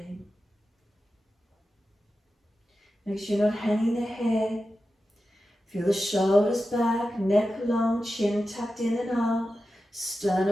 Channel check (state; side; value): normal; both; correlation 0.92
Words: Make sure you're not hanging the head. Feel the shoulders back, neck long, chin tucked in and up,